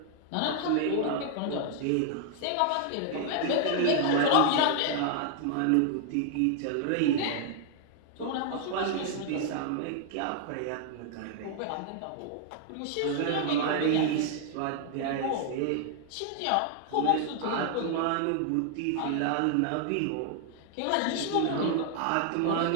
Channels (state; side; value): different; both; correlation 0.00